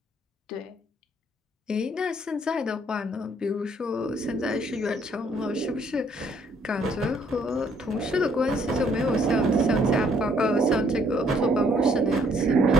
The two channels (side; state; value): both; normal; correlation 0.65